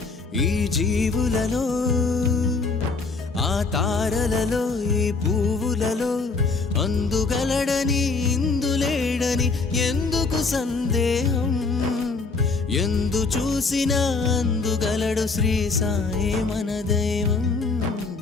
ఈ జీవులలో ఆ తారలలో ఈ పువ్వులలో అందుగలడని ఇందులేడని ఎందుకు సందేహం ఎందు చూసినా అందుగలడు శ్రీ సాయే మన దైవం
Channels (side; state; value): right; quieter; 4.2 dB